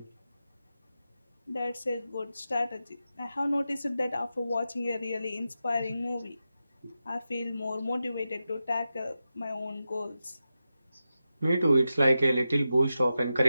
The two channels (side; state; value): both; inverted; correlation -0.91